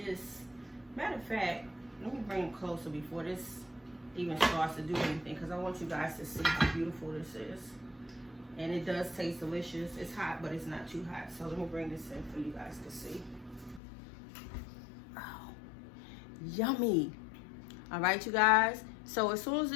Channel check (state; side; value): drops out; right; at 13.8 s